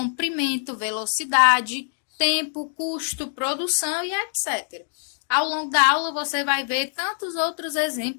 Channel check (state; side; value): silent; right; digital silence